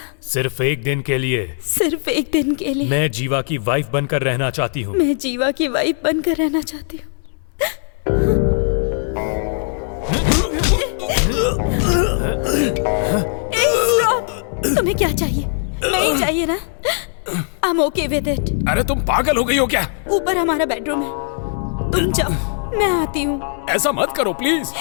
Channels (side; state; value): right; silent; 66 dB below the other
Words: सिर्फ एक दिन के लिए, सिर्फ एक दिन के लिए। मैं जीवा की वाइफ बनकर रहना चाहती हूँ। मैं जीवा की वाइफ बनकर रहना चाहती हूँ। तुम्हें क्या चाहिए? नहीं चाहिए ना? I'm okay with it। अरे तुम पागल हो गई हो क्या? ऊपर हमारा बेडरूम है, तुम जाओ, मैं आती हूँ। ऐसा मत करो please.